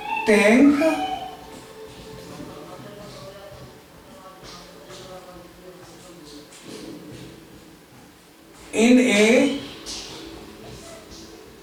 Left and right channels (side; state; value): both; identical; correlation 1.00